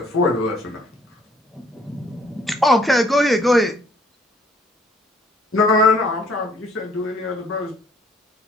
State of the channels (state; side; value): normal; both; correlation 0.61